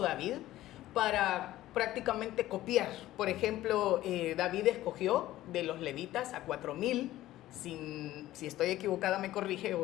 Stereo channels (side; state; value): right; quieter; 15.1 dB